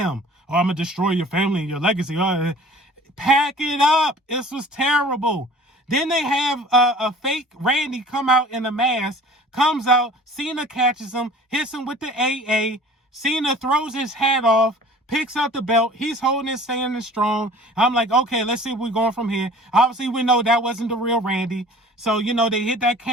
Oh, I'm going to destroy your family and your legacy. Pack it up. This was terrible. Then they have a fake Randy come out in a mask, comes out, Cena catches him, hits him with the AA. Cena throws his hat off, picks up the belt. He's holding it, standing strong. I'm like, okay, let's see where we're going from here. Obviously, we know that wasn't the real Randy. So, they hit that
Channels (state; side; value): normal; both; correlation 0.46